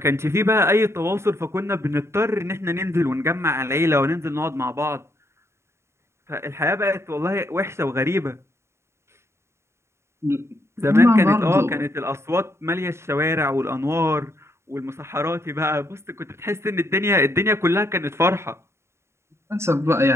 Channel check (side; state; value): left; late; 0.13 ms